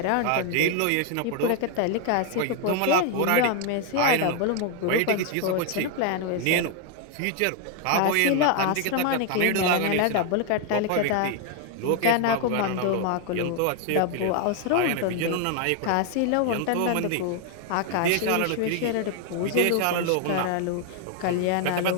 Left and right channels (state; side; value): different; both; correlation 0.01